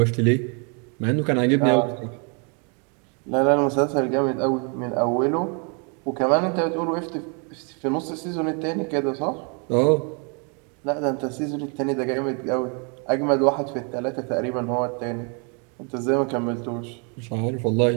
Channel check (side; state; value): left; quieter; 36.5 dB